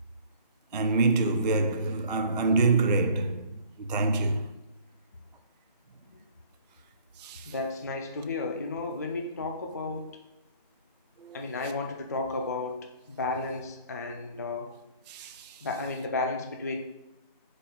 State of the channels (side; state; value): both; inverted; correlation -0.54